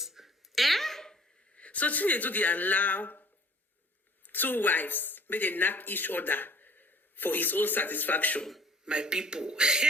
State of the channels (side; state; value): both; normal; correlation 0.52